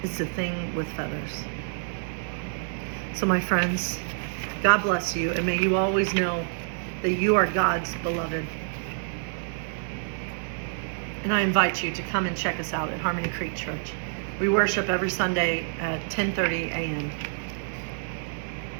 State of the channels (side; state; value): left; silent; 60 dB below the other